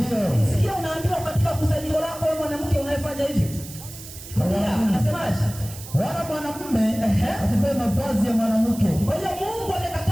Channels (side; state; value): right; noise; hiss, 14 dB below the sound